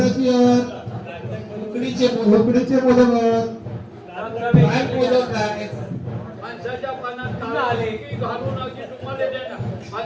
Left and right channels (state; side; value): identical; both; correlation 1.00